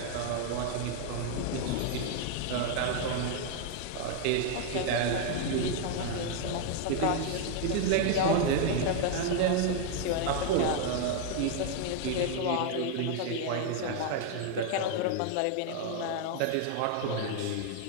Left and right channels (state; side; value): different; both; correlation 0.00